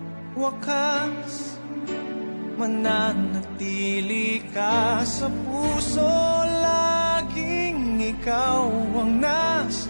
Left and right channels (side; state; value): both; inverted; correlation -1.00